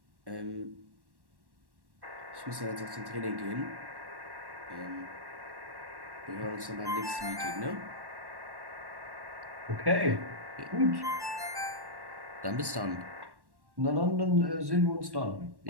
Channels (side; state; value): left; late; 1.1 ms